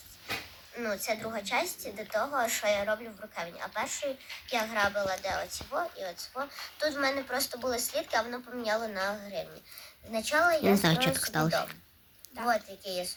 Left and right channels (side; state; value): both; identical; correlation 1.00